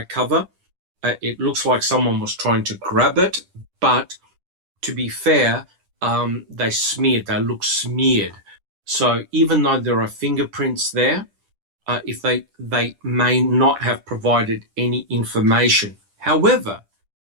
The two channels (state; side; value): late; left; 10 ms